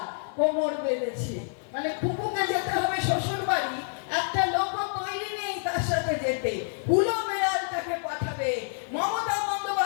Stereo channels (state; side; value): silent; right; digital silence